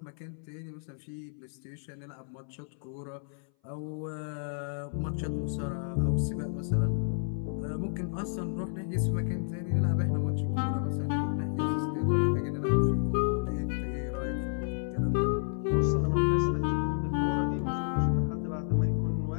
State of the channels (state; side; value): silent; right; 57 dB below the other